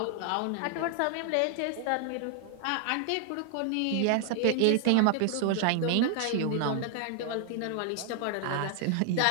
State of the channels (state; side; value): different; both; correlation 0.00